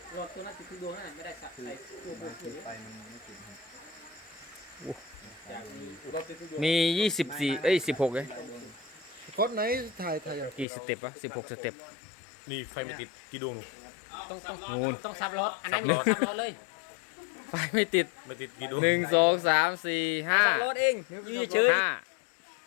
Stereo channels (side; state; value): right; drops out; at 10.7 s